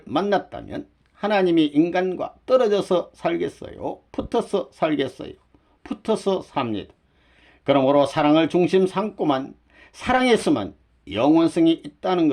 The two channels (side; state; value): both; identical; correlation 1.00